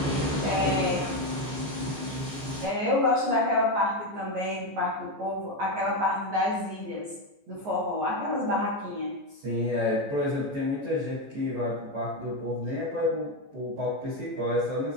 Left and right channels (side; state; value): left; late; 14 ms